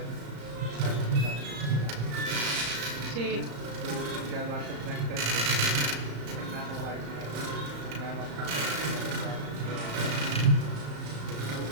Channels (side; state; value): left; late; 34 ms